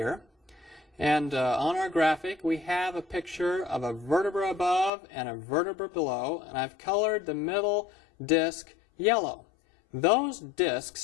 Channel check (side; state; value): right; drops out; at 4.9 s